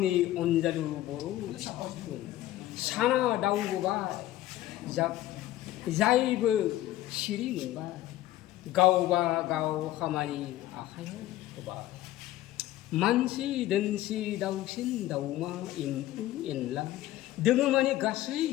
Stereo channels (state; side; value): quieter; right; 14.8 dB